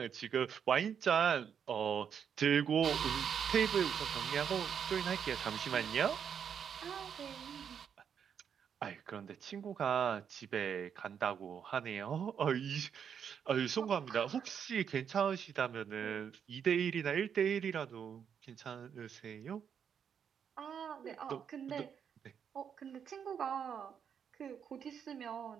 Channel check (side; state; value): left; quieter; 7.7 dB